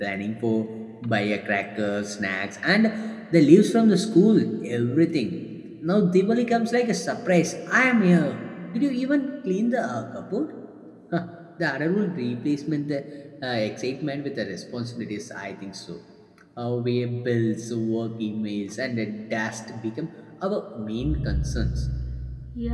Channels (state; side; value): identical; both; correlation 1.00